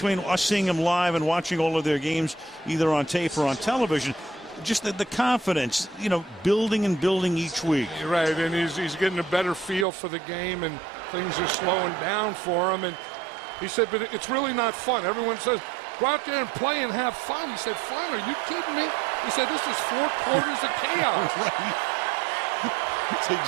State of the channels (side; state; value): left; drops out; at 9.9 s